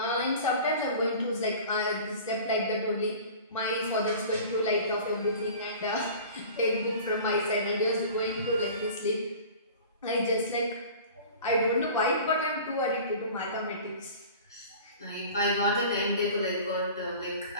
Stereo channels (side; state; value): both; inverted; correlation -0.41